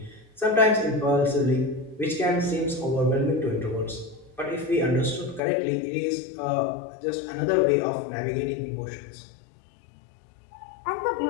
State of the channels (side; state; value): right; drops out; at 5.4 s